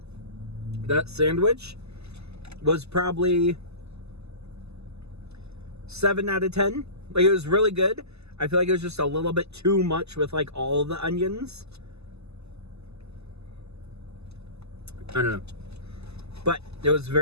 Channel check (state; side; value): late; left; 0.79 ms